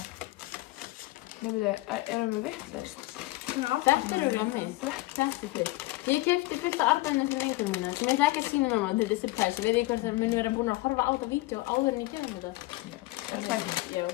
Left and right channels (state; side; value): quieter; right; 20.2 dB